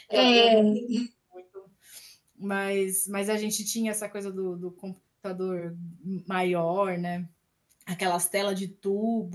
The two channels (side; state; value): both; identical; correlation 1.00